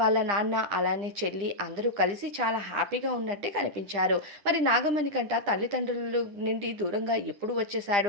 నాన్న అలానే చెల్లి అందరూ కలిసి చాలా హ్యాపీగా ఉన్నట్టే కనిపించారు. మరి నాగమణికంట తల్లిదండ్రుల నుండి దూరంగా ఎప్పుడు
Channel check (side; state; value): left; late; 9.9 ms